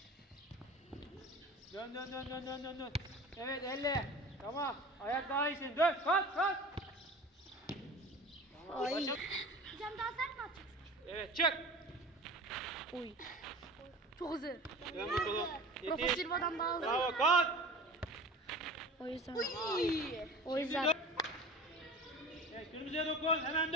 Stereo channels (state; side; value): normal; both; correlation 0.38